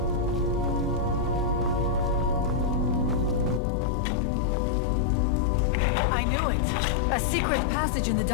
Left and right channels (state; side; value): drops out; right; at 3.6 s